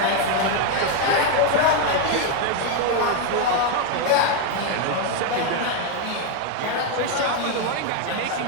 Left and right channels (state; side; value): different; both; correlation 0.01